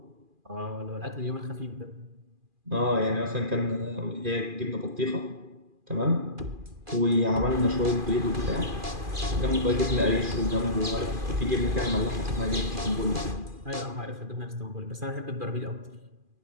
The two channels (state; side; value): late; left; 2.4 ms